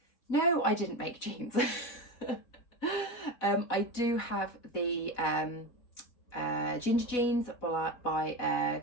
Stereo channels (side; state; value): right; late; 4.1 ms